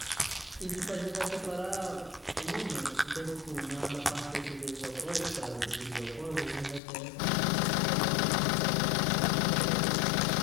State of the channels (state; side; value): drops out; right; at 6.8 s